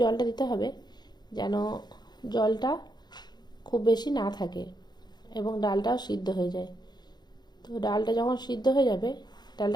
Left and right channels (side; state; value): right; late; 0.20 ms